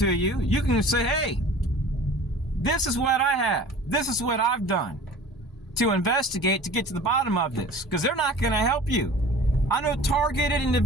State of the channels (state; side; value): normal; both; correlation 0.43